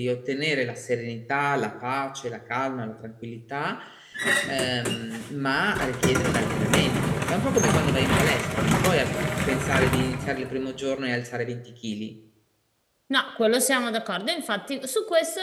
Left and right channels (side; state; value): both; identical; correlation 1.00